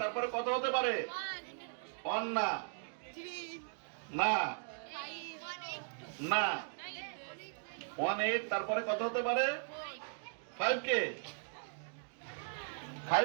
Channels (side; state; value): left; silent; digital silence